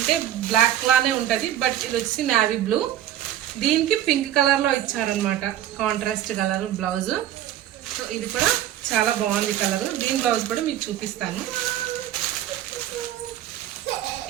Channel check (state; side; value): quieter; left; 12.0 dB